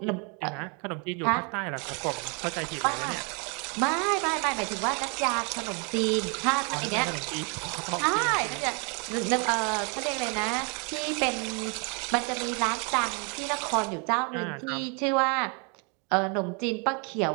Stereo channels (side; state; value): left; quieter; 34.8 dB